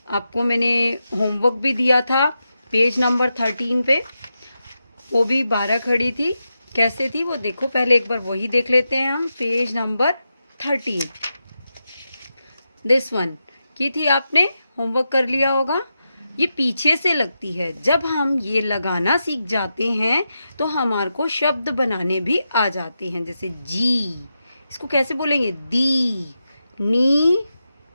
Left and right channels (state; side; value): inverted; both; correlation -0.88